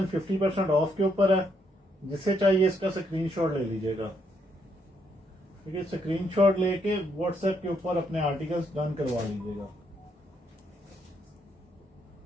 50% ऑफ के ऊपर है। जिसे चाहिए इसका स्क्रीनशॉट ले लीजिएगा। ठीक है, स्क्रीनशॉट लेके व्हाट्सएप के ऊपर अपने आर्टिकल्स डन करवा लीजिएगा।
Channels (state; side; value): normal; both; correlation 0.74